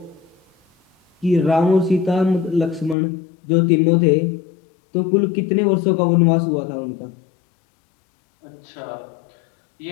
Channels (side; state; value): right; drops out; at 3.0 s